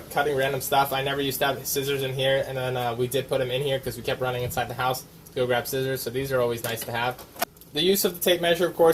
cutting random stuff. I never used to have scissors in here, and then we did put them in here because we kept running inside the house to go grab scissors, so these are always nice to have. The use of the tape measure, of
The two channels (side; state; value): both; identical; correlation 1.00